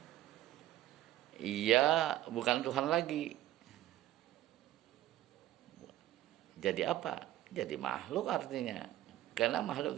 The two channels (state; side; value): quieter; left; 14.6 dB